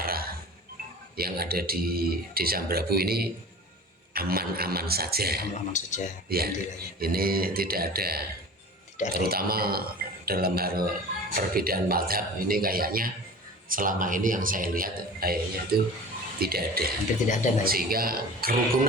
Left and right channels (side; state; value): both; normal; correlation 0.38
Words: yang ada di Desa Brabu ini aman-aman saja. Ya, ini tidak ada. Terutama dalam hal perbedaan mazhab ini kayaknya selama ini yang saya lihat kayaknya itu tidak ada. Hampir tidak ada, Mbak. Sehingga